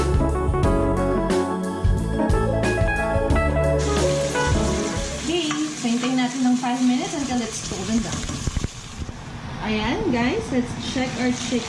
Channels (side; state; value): both; identical; correlation 1.00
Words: Hintayin natin ng 5 minutes until it's golden brown. Ayan, guys. Let's check our